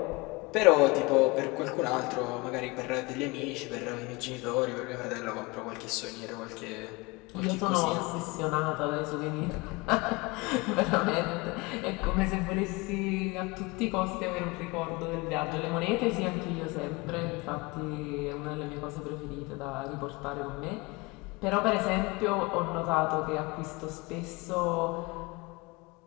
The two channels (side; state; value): right; quieter; 25.0 dB